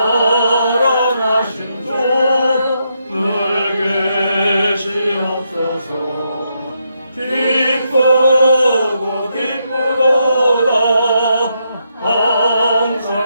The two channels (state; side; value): inverted; both; correlation -0.80